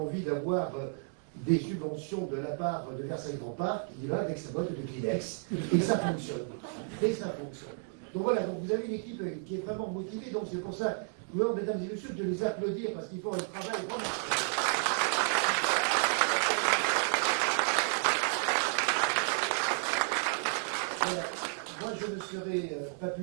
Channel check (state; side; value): silent; left; 56 dB below the other